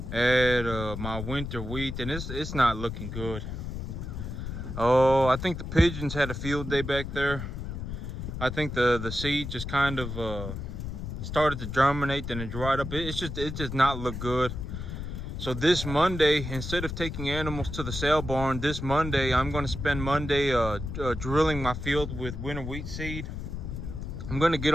at my winter wheat, and it's not looking good. Oh, I think the pigeons had a field day back there. I think the seed just kind of started to germinate, then it dried up. It just not look good. So this Monday, instead of taking animals to the sale barn, this Monday I'm going to spend Monday drilling my field with winter wheat seed. I'm going to get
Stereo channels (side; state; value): left; noise; rumble, 6 dB below the sound